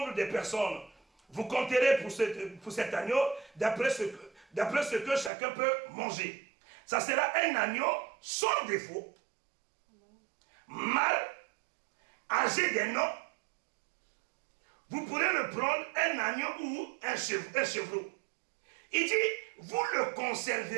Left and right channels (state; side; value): drops out; left; at 5.3 s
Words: de personnes. Vous compterez pour cet agneau d'après ce que chacun peut manger. Ça sera un agneau sans défaut, mâle, âgé d'un an. Vous pourrez le prendre un agneau ou un chevreau. Il dit, vous le